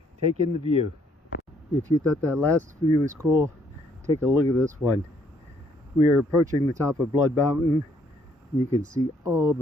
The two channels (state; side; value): normal; both; correlation 0.67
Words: take in the view. If you thought that last view was cool, take a look at this one. We are approaching the top of Blood Mountain. You can see all